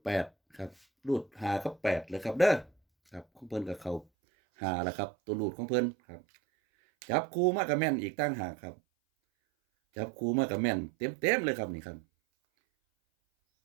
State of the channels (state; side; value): drops out; left; at 4.0 s